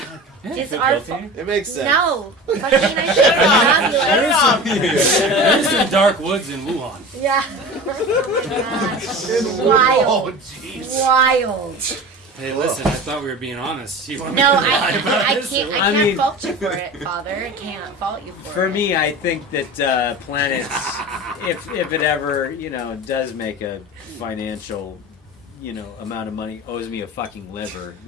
It's our fault. It makes sense. No. Fucking I should have There's some dark woods in Wuhan. Yeah. Wild. Wild. Hey, listen, I thought we were being honest. You want me No, to lie about I this? can't. I I can't mean- fault you for it, Father. I can't fault you for it. For me, I think that PLaNETS, if it ever, does make a financial, amount of money, owes me a fucking liver.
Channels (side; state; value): both; normal; correlation 0.33